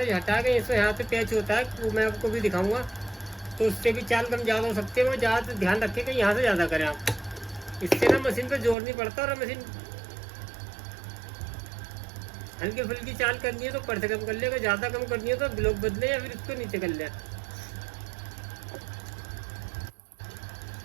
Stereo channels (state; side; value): drops out; left; at 8.8 s